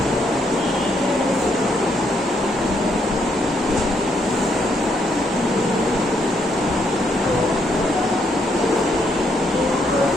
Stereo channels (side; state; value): both; normal; correlation 0.74